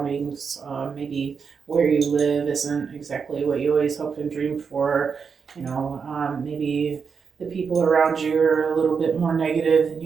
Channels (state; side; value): quieter; left; 5.9 dB